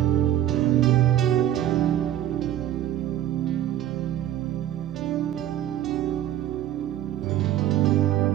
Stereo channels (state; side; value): quieter; left; 12.1 dB